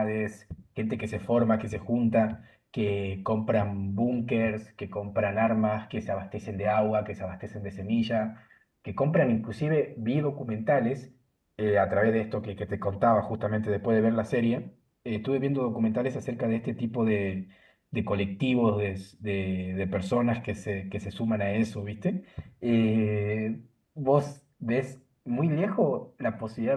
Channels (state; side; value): identical; both; correlation 1.00